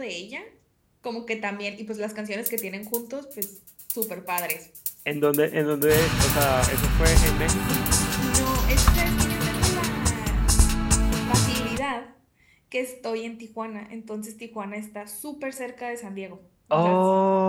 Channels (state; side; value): identical; both; correlation 1.00